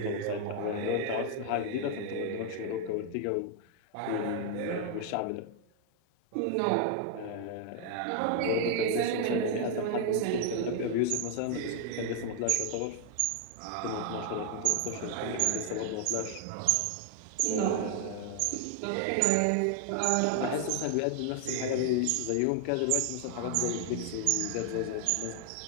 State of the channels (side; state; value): both; different; correlation 0.00